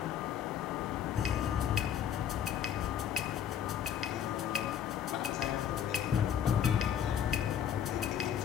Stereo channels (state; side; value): quieter; right; 9.2 dB